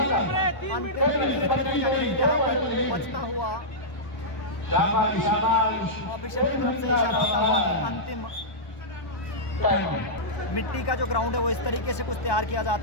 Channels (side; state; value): right; late; 1.2 ms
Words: बचता हुआ ऑफिशियल की तरफ से इशारा होता हुआ कि अंतिम मिट्टी का जो ग्राउंड है वो इस तरीके से कुछ तैयार किया